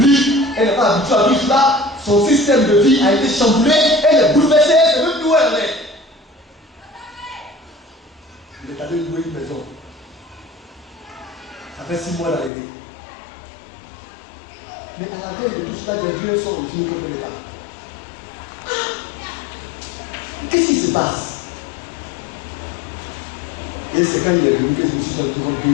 elle n'est pas habituée à tout cela, son système de vie a été chamboulé, elle est bouleversée, elle ne sait même plus où elle est. Il est allé louer une maison. Ça fait 6 mois d'arrivée. Mais à la veille de tout cela, des vieux sont revenus contre l'État. Qu'est-ce qui se passe? Et c'est quand il est venu que je me suis rendu compte que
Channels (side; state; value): right; drops out; at 12.5 s